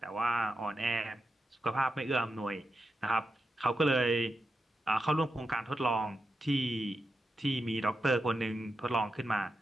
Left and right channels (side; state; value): both; normal; correlation 0.88